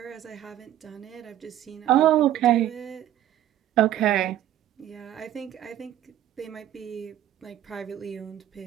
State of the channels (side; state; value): left; quieter; 12.3 dB